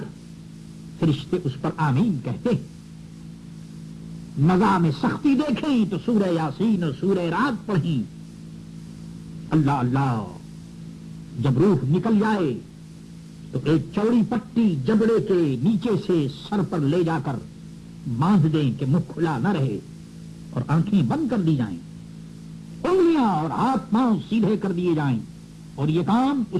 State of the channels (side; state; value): both; identical; correlation 1.00